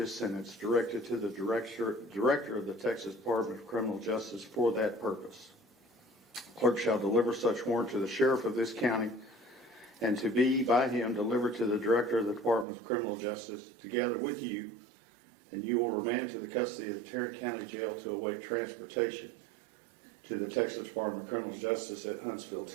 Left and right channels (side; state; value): left; drops out; at 12.7 s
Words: sentence directed to the director of the Texas Department of Criminal Justice for that purpose. Clerk shall deliver such warrant to the sheriff of this county and to be by him delivered to the director of the Department of Criminal Justice together with you, and you will remand to the custody of the Tarrant County Jail to await transportation to the Texas Department of Criminal Justice at Huntsville,